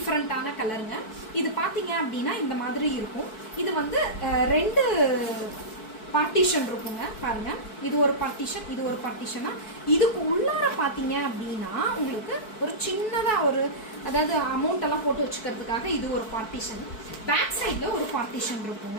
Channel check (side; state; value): right; late; 4.6 ms